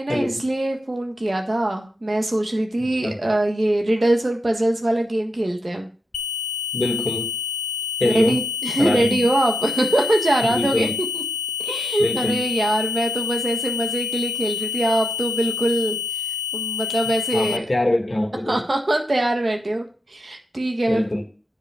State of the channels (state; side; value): normal; both; correlation 0.82